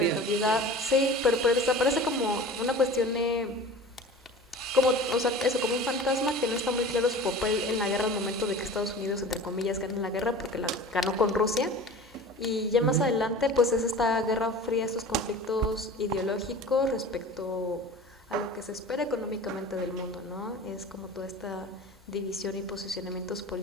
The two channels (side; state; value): both; normal; correlation 0.38